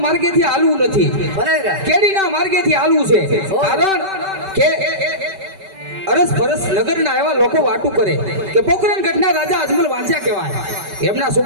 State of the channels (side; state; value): left; late; 5.2 ms